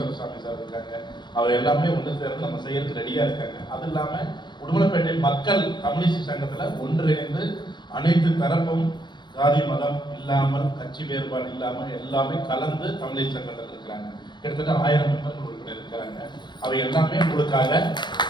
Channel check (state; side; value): late; right; 0.22 ms